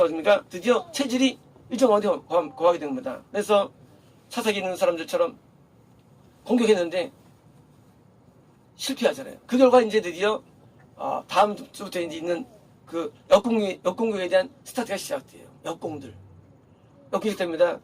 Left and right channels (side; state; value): both; identical; correlation 1.00